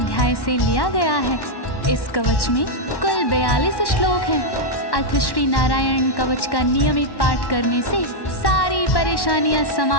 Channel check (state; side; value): late; right; 1.1 ms